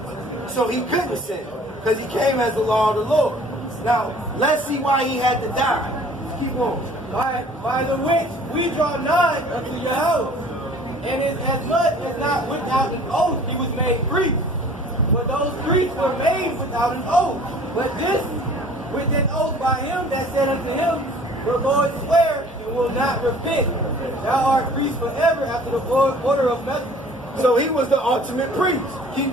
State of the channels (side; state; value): both; normal; correlation 0.50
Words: So he couldn't sin, because he came as the law of the Lord. Now, let's see why he had to die. Keep on. By the which we draw nigh unto Yahweh, and is as much as not without an oath he was made priest. For those priests were made without an oath. But this with an oath by him that said unto him, the Lord swear and will not repent. Thou art priest forever after the order of Melchizedek. So he was the ultimate priest. Keep